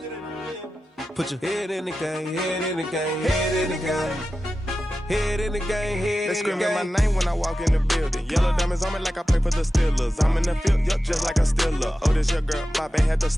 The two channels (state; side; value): normal; both; correlation 0.93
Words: Put your head in the game, head in the game, head in the game. Head in the game, head in the game. They screaming my name when I walk in the building. Yellow diamonds on me like I play for the Steelers. I'm in the field, yup, just like a Steeler. Oh, this your girl, my band had the